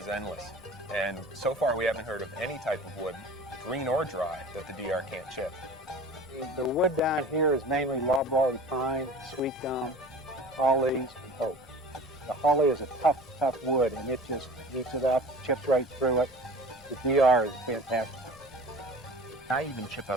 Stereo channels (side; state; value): both; normal; correlation 0.41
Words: endless. And so far, we haven't heard of any type of wood, green or dry, that the DR can't chip. The wood down here is mainly loblolly pine, sweet gum, hollies, and oak. The holly is a tough wood, and it just eats it up, chips right through it. The DR is fantastic. I even chip